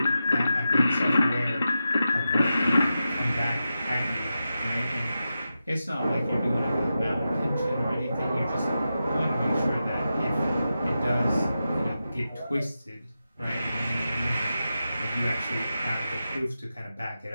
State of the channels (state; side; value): inverted; both; correlation -0.90